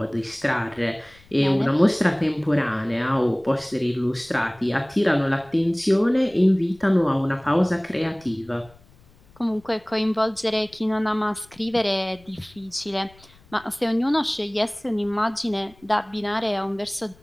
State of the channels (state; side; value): noise; left; rumble, 27 dB below the sound